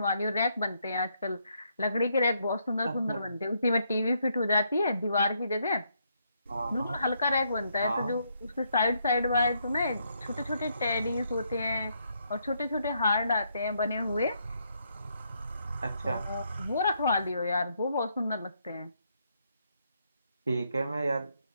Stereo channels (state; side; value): inverted; both; correlation -0.75